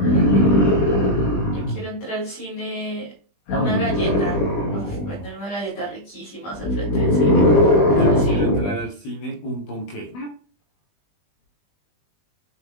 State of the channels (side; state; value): right; late; 20 ms